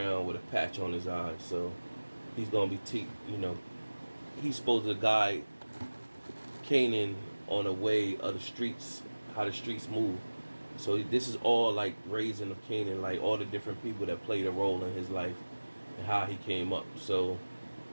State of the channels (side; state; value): both; inverted; correlation -1.00